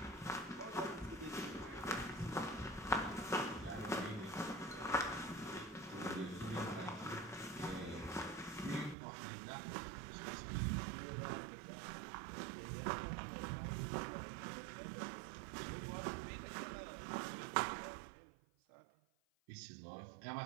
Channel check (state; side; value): drops out; left; at 9.0 s